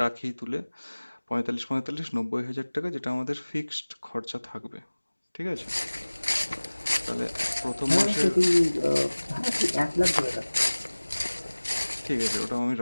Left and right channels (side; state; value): both; inverted; correlation -1.00